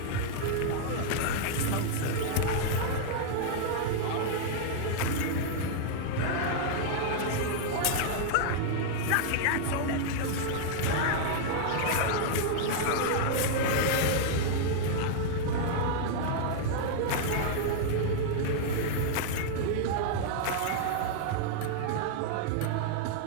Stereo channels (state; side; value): different; both; correlation -0.01